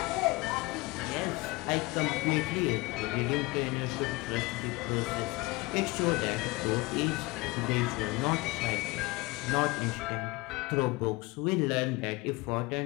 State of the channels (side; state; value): right; quieter; 22.8 dB